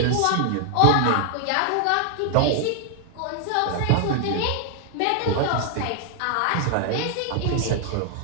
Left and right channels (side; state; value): both; different; correlation 0.00